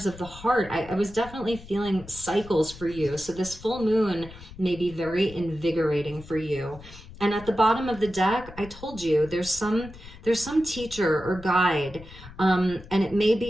of the heart. I was definitely feeling cycles for you. So this full moon may be very invigorating for you. And at the bottom of the deck, I told you there's some teacher or guide, and it may be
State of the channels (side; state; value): left; noise; rumble, 17 dB below the sound